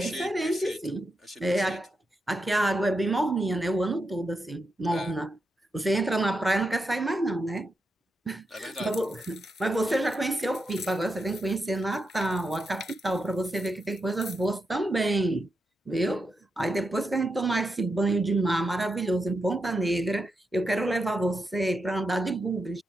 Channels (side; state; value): both; normal; correlation 0.86